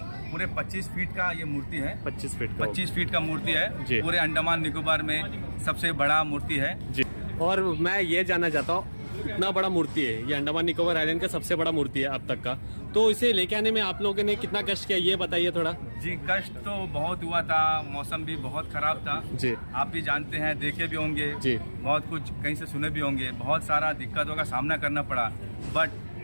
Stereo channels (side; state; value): both; inverted; correlation -1.00